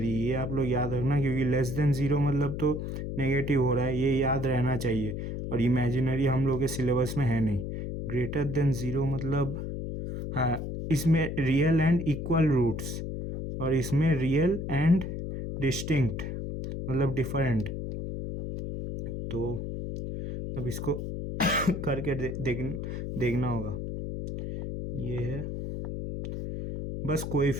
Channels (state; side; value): noise; left; hum, 5 dB below the sound